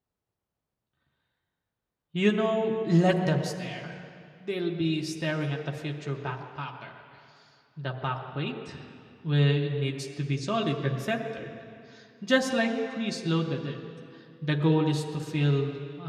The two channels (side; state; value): both; identical; correlation 1.00